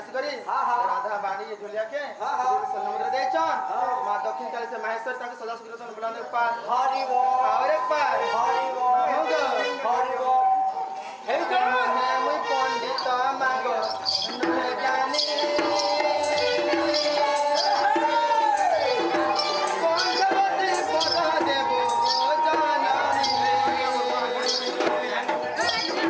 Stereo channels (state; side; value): identical; both; correlation 1.00